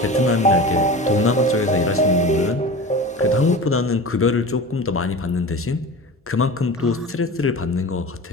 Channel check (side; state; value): both; normal; correlation 0.32